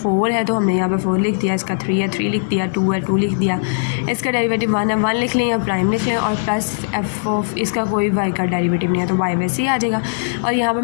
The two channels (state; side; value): silent; right; digital silence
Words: है तो हमने यहाँ पे 4 लिख दिया, इसका 3 है 3 लिख दिया, 2 है 2 लिख दिया, इसका डेरिवेटिव 1 है 1 लिख लें या प्राइम लिख लें, और प्लस एफ ऑफ इसका कोई वाई का डेरिवेटिव नहीं है तो वाई वैसे ही आ जाएगा। और यहाँ पर